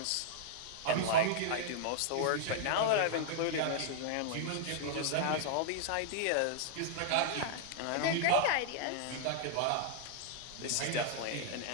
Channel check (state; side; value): different; both; correlation -0.01